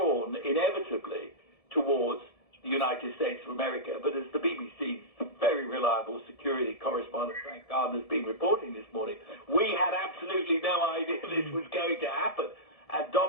inevitably towards the United States of America. But as the BBC's very reliable security correspondent, Frank Gardner, has been reporting this morning, we had absolutely no idea this was going to happen. And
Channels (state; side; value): late; right; 1.7 ms